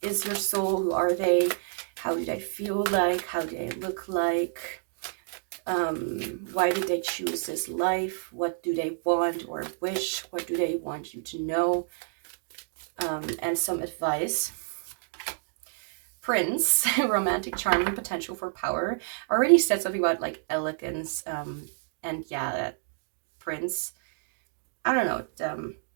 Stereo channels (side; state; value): left; silent; digital silence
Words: is your soul? Who are they? How do they feel like? How do they look like? Why did they choose this life? What do they want or wish? What do they want you to know? And some advice. Prince, romantic charm and potential for power. I already said something about like elegance, and yeah, that Prince, I don't know,